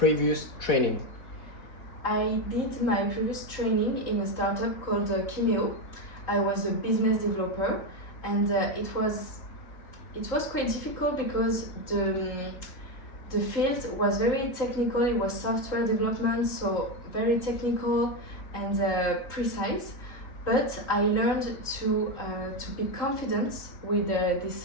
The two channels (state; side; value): late; right; 3.8 ms